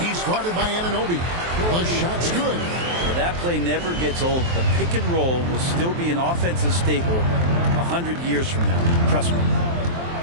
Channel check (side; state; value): left; late; 23 ms